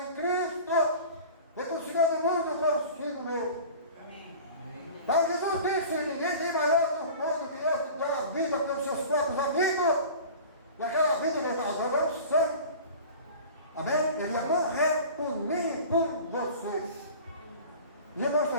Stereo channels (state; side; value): inverted; both; correlation -0.39